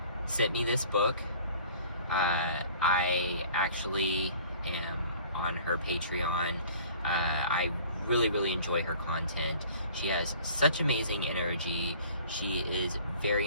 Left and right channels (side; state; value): both; inverted; correlation -0.49